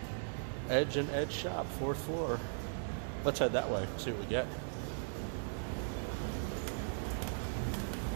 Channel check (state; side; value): silent; left; digital silence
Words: Edge and Edge Shop, 4th floor. Let's head that way, see what we get.